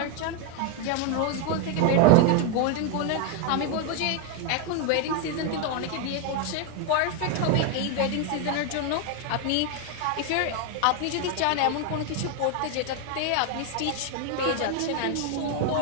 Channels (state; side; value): different; both; correlation 0.01